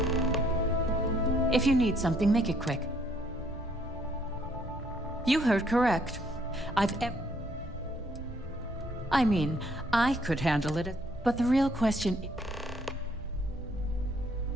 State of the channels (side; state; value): both; normal; correlation 0.66